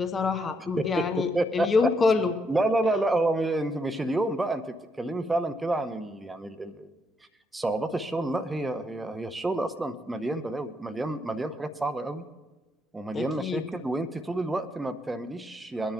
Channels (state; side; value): normal; both; correlation 0.76